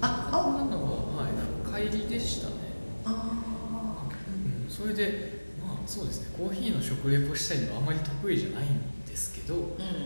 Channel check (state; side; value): inverted; both; correlation -1.00